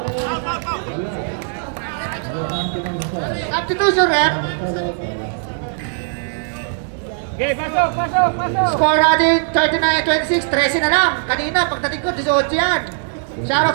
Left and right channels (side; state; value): left; silent; 66 dB below the other